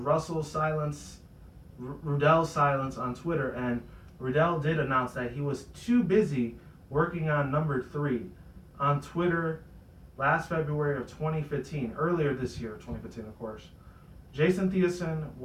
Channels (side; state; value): both; identical; correlation 1.00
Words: Ruddell's silence on Twitter, and Ruddell did announce that he was too busy working on number 3 on Twitter last February of 2015, earlier this year, 2015, of course. Jason Theosin